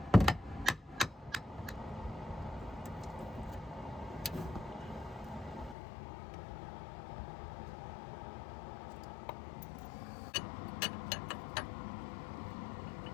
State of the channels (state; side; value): drops out; right; at 5.8 s